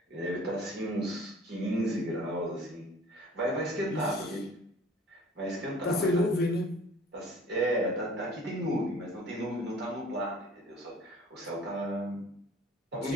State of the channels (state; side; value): normal; both; correlation 0.49